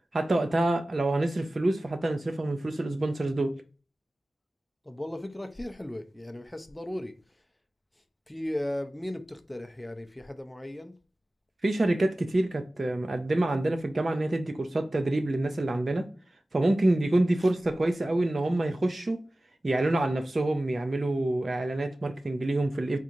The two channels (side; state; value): both; normal; correlation 0.97